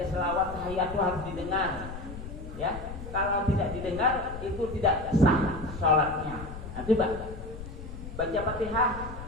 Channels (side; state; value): left; noise; rumble, 10 dB below the sound